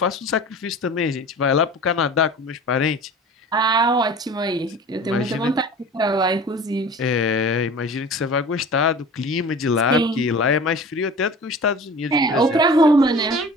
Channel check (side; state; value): both; normal; correlation 0.40